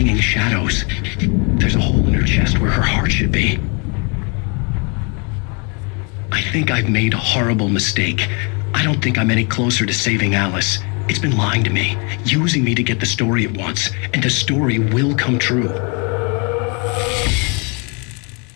shadows. There's a hole in her chest where her heart should be. I think I've made a horrible mistake. I don't think I'm any closer to saving Alice. It's been lying to me, using me to get the story it wants, and the story will come true.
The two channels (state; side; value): quieter; right; 33.8 dB